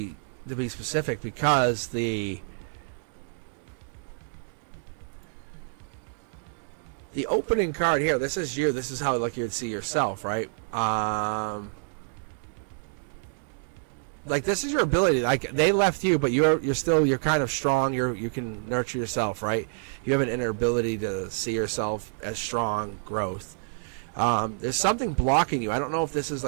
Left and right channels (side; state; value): left; silent; digital silence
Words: specific, because the opening card here. This is you. This is how like you would see yourself, right? Like, this is your ability. Like, they left you, but you're kind of strong. You can nurture yourself, right? You have an inner ability to see yourself as strong, growth. There's something blocking you. I don't know if this is